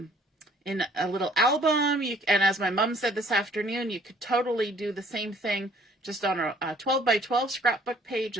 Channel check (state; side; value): normal; both; correlation 0.59